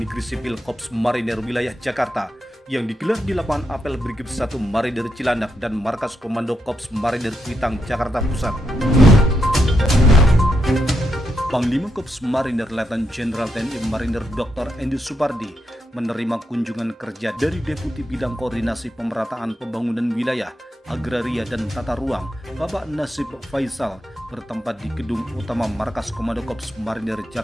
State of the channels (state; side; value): normal; both; correlation 0.82